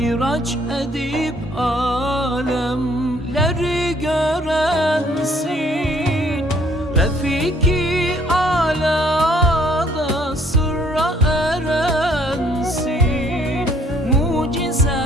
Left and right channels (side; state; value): both; normal; correlation 0.62